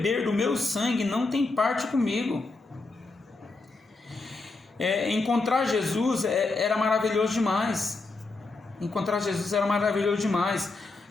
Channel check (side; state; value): right; quieter; 3.5 dB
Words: do meu sangue não tem parte comigo. Encontrar Jesus era maravilhoso demais. Encontrar Jesus era maravilhoso demais.